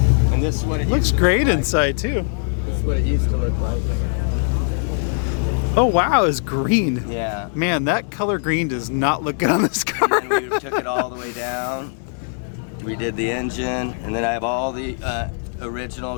And this is what it Looks used to great look like. inside too. This is what it used to look like. Oh wow, it's green. Yeah. Man, that color green does not look good on this car. And then we took it all the way down. We did the engine, and then I have all the original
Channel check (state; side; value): silent; right; 65 dB below the other